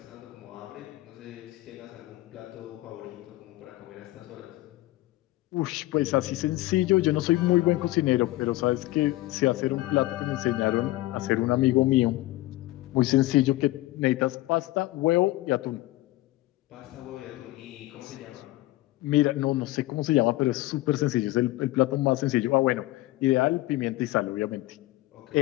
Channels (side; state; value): right; quieter; 18.1 dB